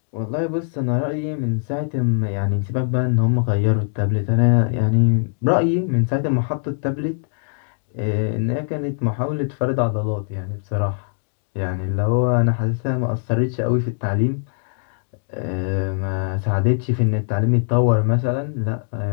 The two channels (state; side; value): silent; right; digital silence